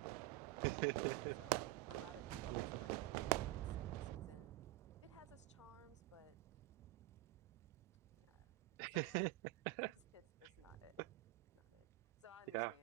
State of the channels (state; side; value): quieter; left; 18.6 dB